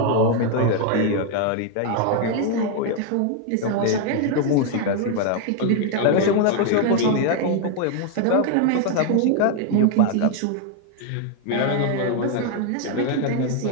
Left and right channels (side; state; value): both; different; correlation 0.00